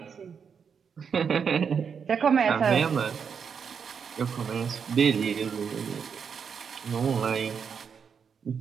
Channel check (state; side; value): quieter; left; 6.6 dB